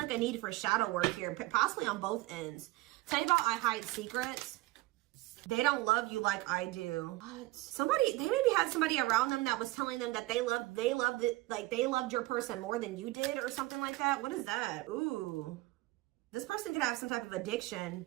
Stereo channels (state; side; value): quieter; left; 19.5 dB